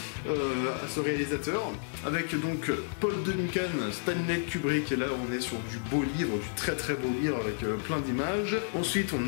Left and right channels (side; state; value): right; silent; digital silence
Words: à ce réalisateur, avec donc Paul Duncan, Stanley Kubrick, et là on est sur du beau livre, du très très beau livre avec plein d'images. Ensuite